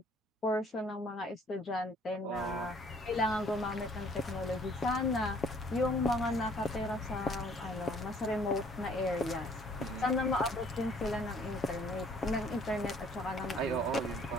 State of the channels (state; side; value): normal; both; correlation 0.59